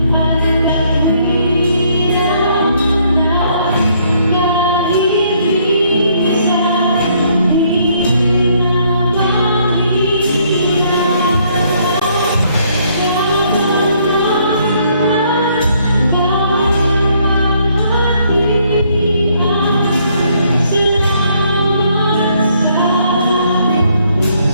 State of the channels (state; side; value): inverted; both; correlation -0.68